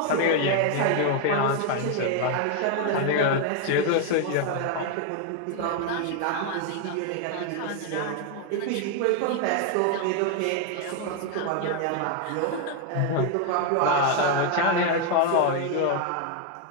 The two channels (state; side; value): different; both; correlation 0.01